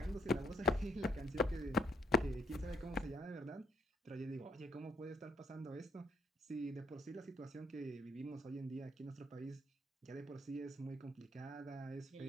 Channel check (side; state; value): both; normal; correlation 0.72